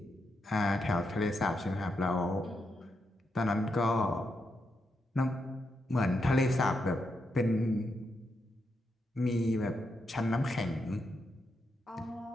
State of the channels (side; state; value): both; normal; correlation 0.83